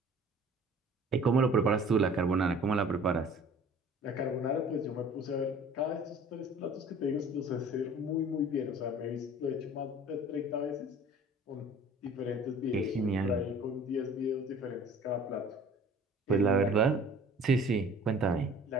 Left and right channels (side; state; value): both; normal; correlation 0.48